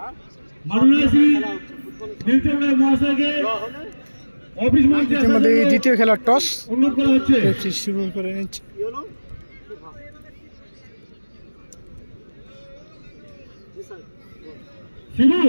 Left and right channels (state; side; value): inverted; both; correlation -1.00